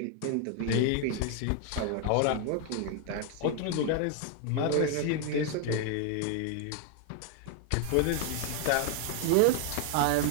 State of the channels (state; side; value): different; both; correlation 0.00